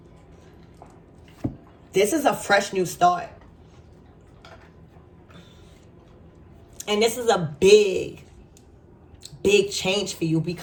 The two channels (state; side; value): identical; both; correlation 1.00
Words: This is a fresh new start. And this is a big change for you